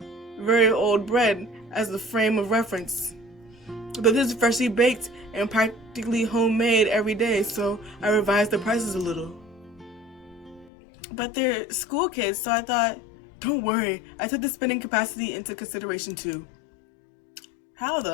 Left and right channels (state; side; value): drops out; right; at 10.7 s